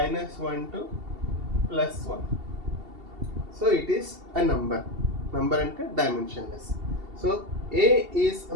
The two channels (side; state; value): left; late; 2.7 ms